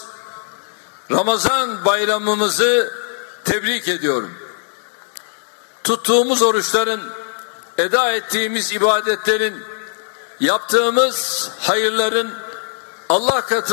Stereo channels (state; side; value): silent; right; digital silence